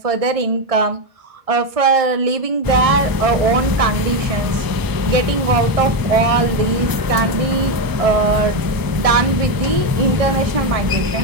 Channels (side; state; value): left; late; 1.0 ms